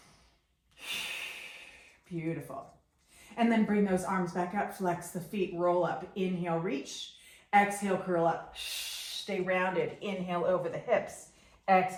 Beautiful. And then bring those arms back up, flex the feet, roll up. Inhale, reach. Exhale, curl up. Stay rounded. Inhale over the hips.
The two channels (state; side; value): identical; both; correlation 1.00